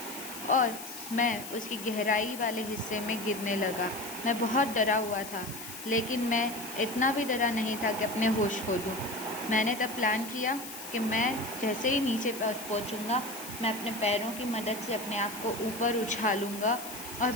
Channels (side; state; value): left; noise; hiss, 11 dB below the sound